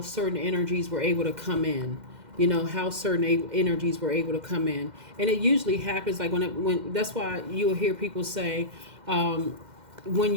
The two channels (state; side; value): late; left; 2.1 ms